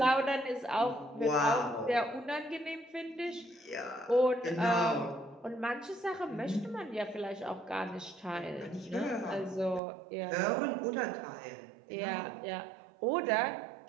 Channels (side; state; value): left; drops out; at 9.8 s